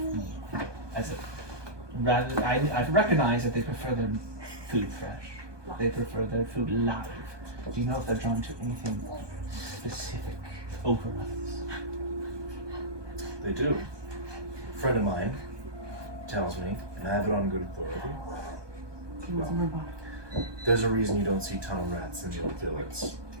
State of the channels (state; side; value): late; left; 1.2 ms